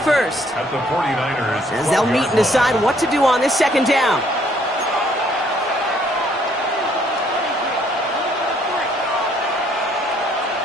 first. As they'll meet and decide what to do on this 2nd down.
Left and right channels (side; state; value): both; normal; correlation 0.65